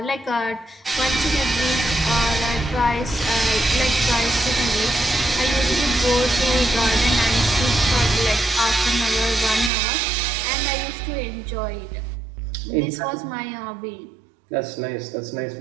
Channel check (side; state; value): left; drops out; at 9.7 s